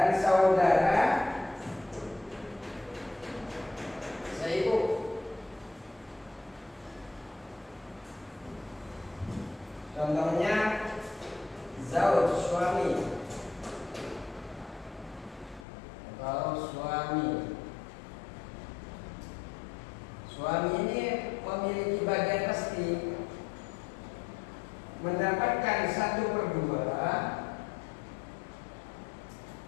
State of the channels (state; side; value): drops out; right; at 15.7 s